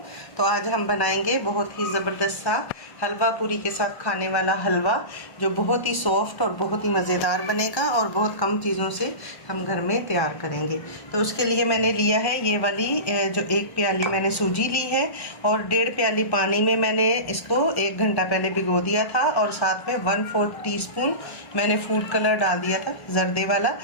तो आज हम बनाएंगे बहुत ही ज़बरदस्त सा हलवा पूरी के साथ खाने वाला हलवा, जो बहुत ही सॉफ्ट और बहुत ही मज़ेदार बनेगा और बहुत कम चीज़ों से हम घर में तैयार करेंगे। तो उसके लिए मैंने लिया है ये वाली जो 1 प्याली मैंने सूजी ली है और 1.5 प्याली पानी में मैंने इसको 1 घंटा पहले भिगो दिया था और साथ में 1/4 टीस्पून मैंने फूड कलर डाल दिया था, जर्दे वाला।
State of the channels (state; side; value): late; right; 1.1 ms